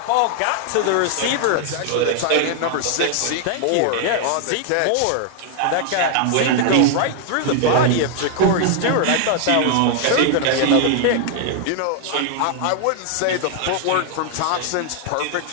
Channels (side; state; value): both; different; correlation 0.00